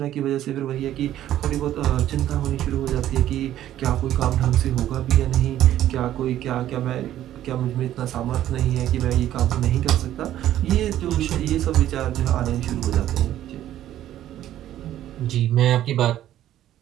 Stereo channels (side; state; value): left; quieter; 12.5 dB